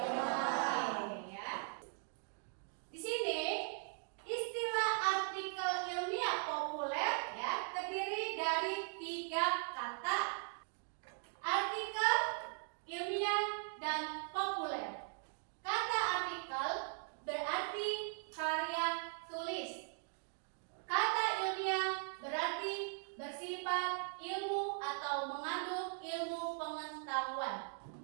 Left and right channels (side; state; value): left; silent; 51 dB below the other